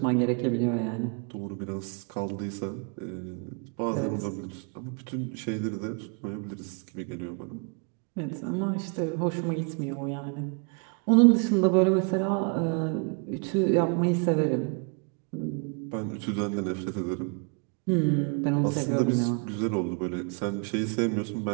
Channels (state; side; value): quieter; left; 37.0 dB